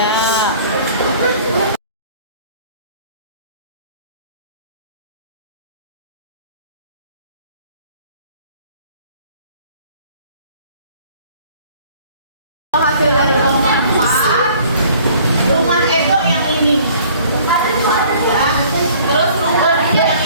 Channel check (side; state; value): both; inverted; correlation -0.54